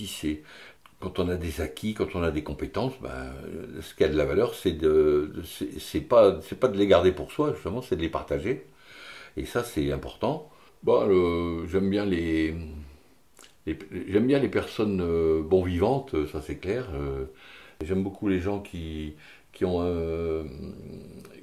C'est quand on a des acquis, quand on a des compétences, ce qui a de la valeur, c'est pas de les garder pour soi, justement, c'est de les partager. Et ça, c'est important. J'aime bien les personnes bon vivantes, ça c'est clair. J'aime beaucoup les gens qui se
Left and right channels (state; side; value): identical; both; correlation 1.00